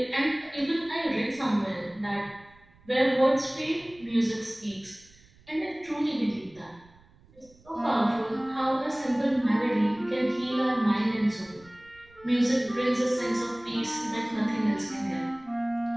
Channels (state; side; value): noise; right; rumble, 27 dB below the sound